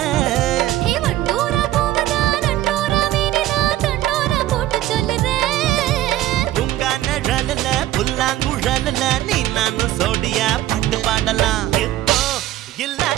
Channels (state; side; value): quieter; left; 14.3 dB